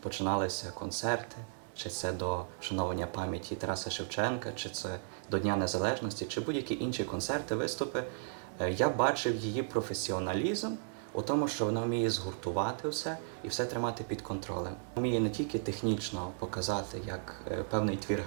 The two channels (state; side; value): silent; left; digital silence